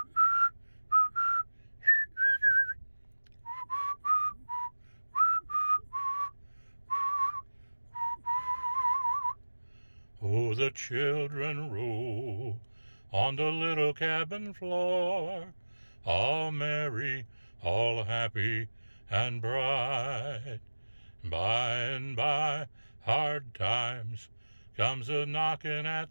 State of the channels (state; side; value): inverted; both; correlation -1.00